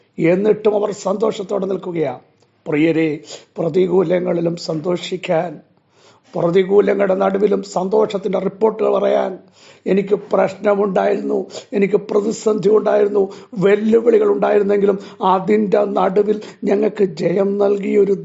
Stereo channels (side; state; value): both; identical; correlation 1.00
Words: എന്നിട്ടും അവർ സന്തോഷത്തോടെ നിൽക്കുകയാണ്. പ്രിയരെ, പ്രതികൂലങ്ങളിലും സന്തോഷിക്കാൻ, പ്രതികൂലങ്ങളുടെ നടുവിലും സന്തോഷത്തിൻ്റെ റിപ്പോർട്ടുകൾ പറയാൻ, എനിക്ക് പ്രശ്നമുണ്ടായിരുന്നു, എനിക്ക് പ്രതിസന്ധി ഉണ്ടായിരുന്നു, വെല്ലുവിളികൾ ഉണ്ടായിരുന്നെങ്കിലും അതിൻ്റെ നടുവിൽ ഞങ്ങൾക്ക് ജയം നൽകിയൊരു